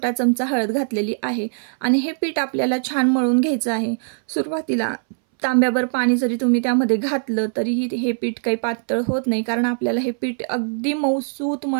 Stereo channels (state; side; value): silent; left; 64 dB below the other